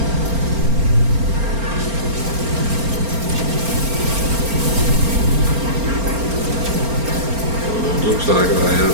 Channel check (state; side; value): late; left; 4.4 ms